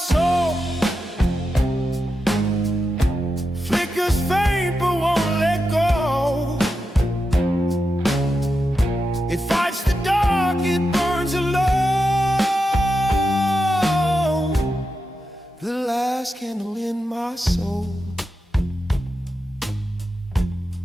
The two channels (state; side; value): normal; both; correlation 0.88